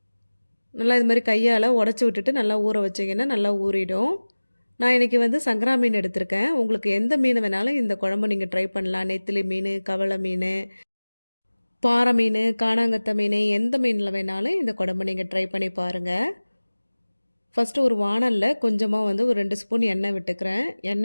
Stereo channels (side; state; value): both; inverted; correlation -1.00